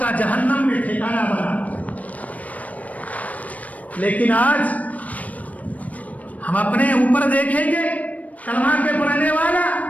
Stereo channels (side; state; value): right; late; 0.070 ms